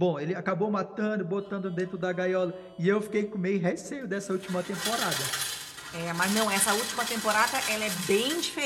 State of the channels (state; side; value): identical; both; correlation 1.00